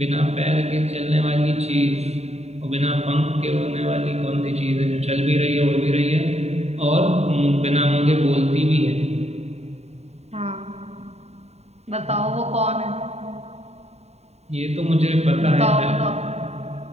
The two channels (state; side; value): late; left; 0.31 ms